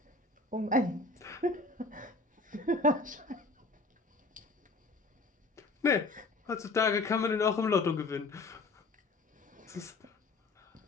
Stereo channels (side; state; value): right; quieter; 3.3 dB